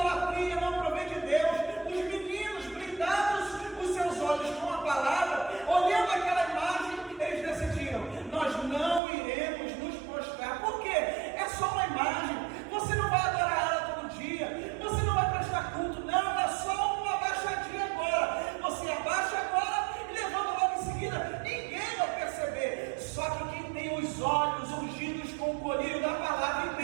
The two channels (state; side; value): drops out; left; at 9.0 s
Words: não provém de Deus. Os meninos blindados os seus olhos com a palavra, olhando aquela imagem, eles decidiram: nós não iremos nos prostrar. Por quê? É só uma imagem. Você não vai adorar ela todo dia, você não vai prestar culto, não, é só uma abaixadinha agora. Você abaixa agora e levanta logo em seguida, ninguém vai perceber. Só que quem tem os olhos ungidos com o colírio da palavra